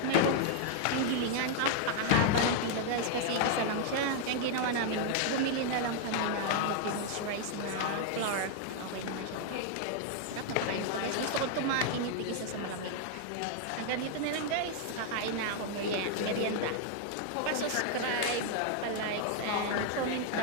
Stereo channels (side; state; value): both; different; correlation 0.00